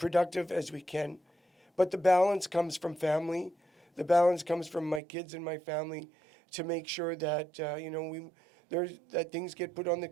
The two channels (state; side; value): drops out; left; at 5.0 s